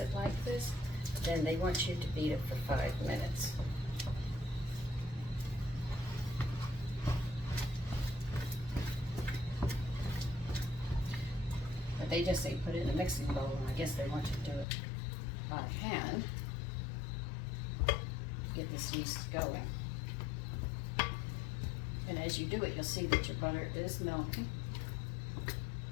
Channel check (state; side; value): drops out; right; at 14.7 s